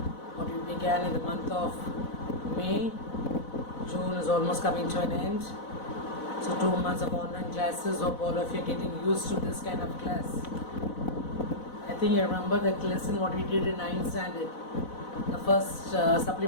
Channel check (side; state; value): right; late; 4.0 ms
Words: What we began in the month of May. June is almost coming to an end. So 2 months of online classes. Hope all of you are getting used to this kind of class. I think you remember that lesson what we did in 9th standard. The first